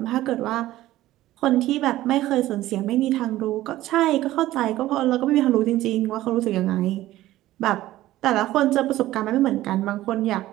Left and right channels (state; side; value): quieter; left; 15.4 dB